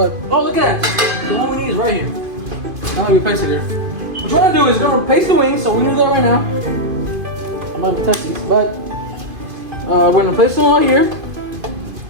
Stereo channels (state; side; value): late; left; 2.5 ms